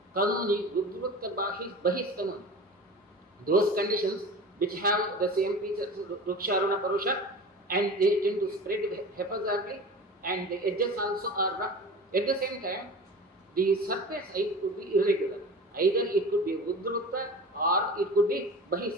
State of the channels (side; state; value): both; normal; correlation 0.35